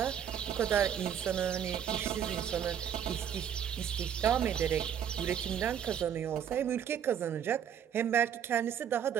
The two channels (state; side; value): quieter; left; 8.9 dB